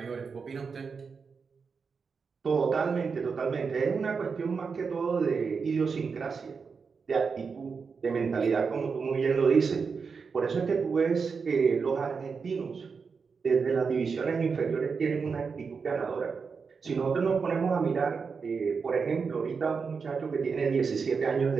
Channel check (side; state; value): left; quieter; 5.4 dB